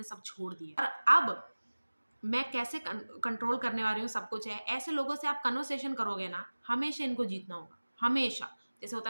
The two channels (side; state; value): both; inverted; correlation -1.00